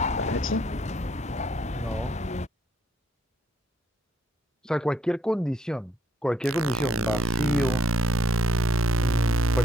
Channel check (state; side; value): normal; both; correlation 0.68